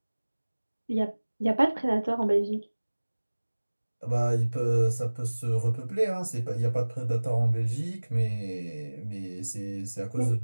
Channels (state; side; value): inverted; both; correlation -1.00